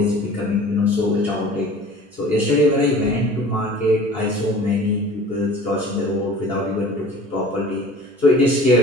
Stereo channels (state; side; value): normal; both; correlation 0.45